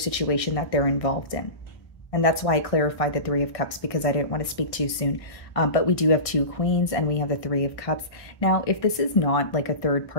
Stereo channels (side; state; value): right; late; 1.6 ms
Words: that they're involved in. And that's why I clarified the Three of Cups, because I didn't want to speak too soon. But we do have 2 queens and we have the 3 of cups. Now, if this is not like a third